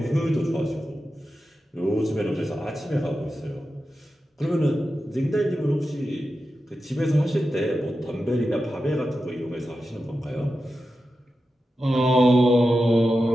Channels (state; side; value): normal; both; correlation 0.91